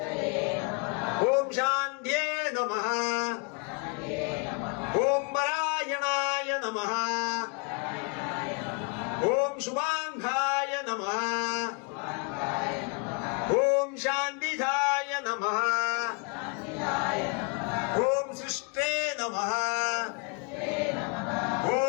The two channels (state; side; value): quieter; right; 34.4 dB